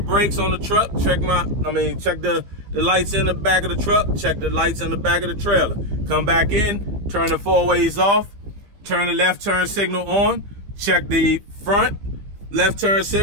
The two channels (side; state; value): left; late; 15 ms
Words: on the truck. Check the lights in the back of the truck. Check the lights in the back of the trailer. Come back in. Turn the 4-ways off. Turn the left turn signal on. Check the front left turn